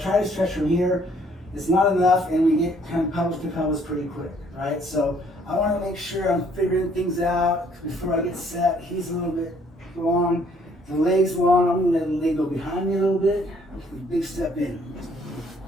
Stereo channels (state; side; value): normal; both; correlation 0.63